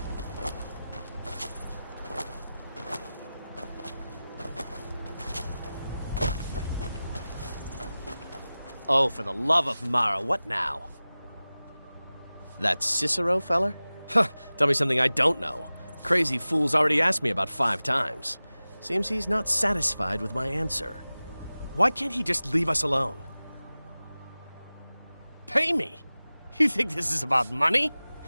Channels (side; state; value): both; inverted; correlation -0.97